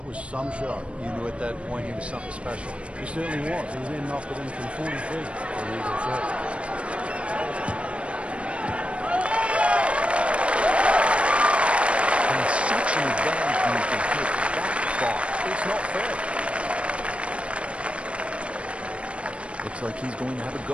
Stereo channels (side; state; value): left; late; 0.060 ms